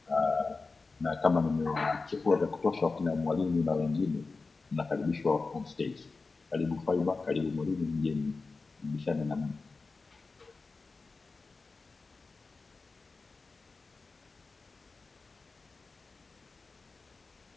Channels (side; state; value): right; quieter; 4.0 dB